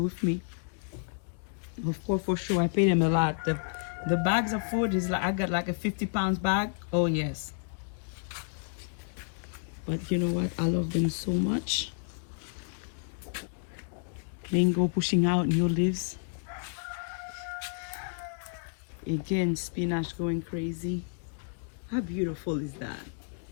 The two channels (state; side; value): silent; right; 57 dB below the other